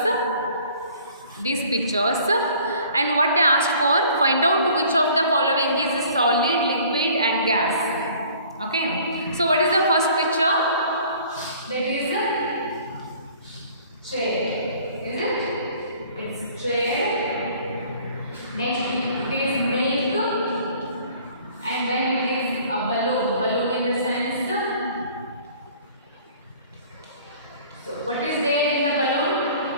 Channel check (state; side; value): inverted; both; correlation -0.52